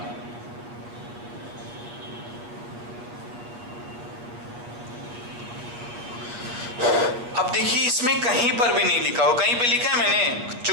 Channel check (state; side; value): late; left; 8.3 ms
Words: अब देखिए इसमें कहीं पर भी नहीं लिखा हो, कहीं पे लिखा है मैंने